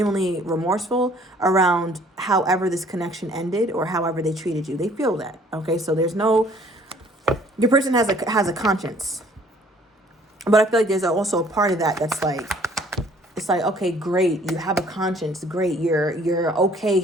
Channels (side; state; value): both; normal; correlation 0.57